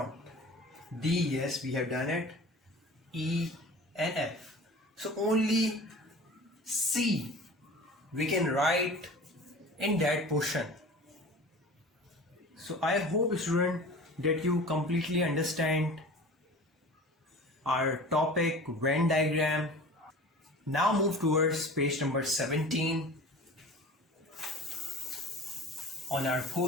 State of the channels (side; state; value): both; normal; correlation 0.39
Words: D, yes, we have done it. E and F. So only C we can write in that portion. So I hope, student, that you completely understand our topic Venn diagram. Now move towards page number 17 on our